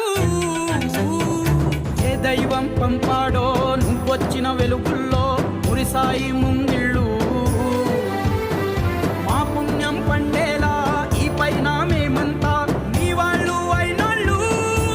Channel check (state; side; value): identical; both; correlation 1.00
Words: ఏ దైవం పంపాడో నువ్వొచ్చిన వెలుగుల్లో మురిసాయి ముంగిళ్ళు